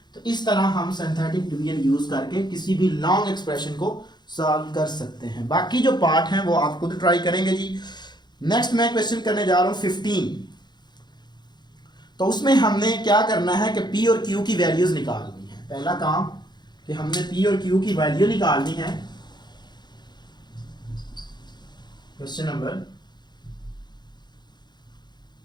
तो इस तरह हम सिंथेटिक डिवीजन यूज करके किसी भी लॉन्ग एक्सप्रेशन को सॉल्व कर सकते हैं। बाकी जो पार्ट हैं वो आप खुद ट्राई करेंगे जी। नेक्स्ट मैं क्वेश्चन करने जा रहा हूँ 15। तो उसमें हमने क्या करना है कि P और Q की वैल्यूज निकालनी है। पहला काम कि हमने P और Q की वैल्यू निकालनी है। Question number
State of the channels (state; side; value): late; right; 0.21 ms